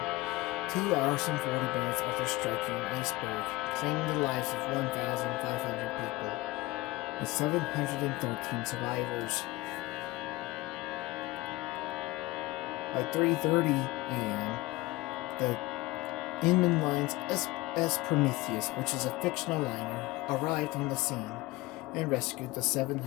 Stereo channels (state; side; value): quieter; right; 20.0 dB